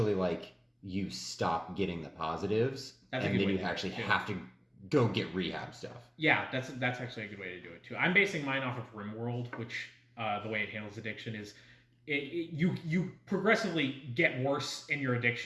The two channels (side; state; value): both; identical; correlation 1.00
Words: like you stop getting the positives, and then you actually have to go get rehab stuff. Yeah, that's actually a good way to do it too. I'm basing mine off of RimWorld, which the way it handles addiction is you progressively get worse in your